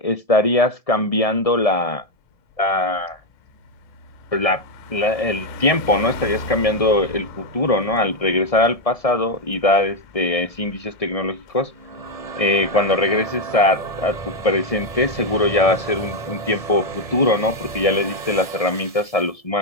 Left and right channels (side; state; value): right; late; 1.7 ms